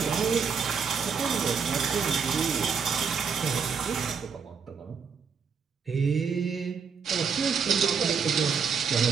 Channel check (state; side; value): quieter; left; 6.1 dB